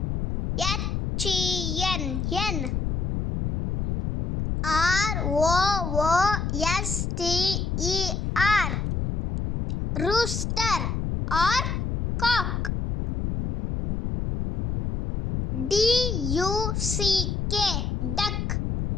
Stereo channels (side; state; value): left; noise; rumble, 1 dB below the sound